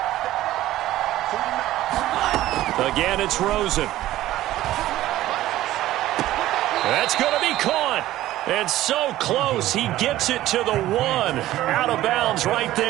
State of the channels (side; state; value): left; quieter; 14.9 dB